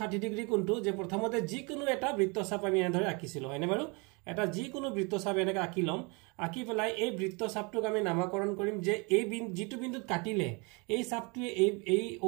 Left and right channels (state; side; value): quieter; left; 30.5 dB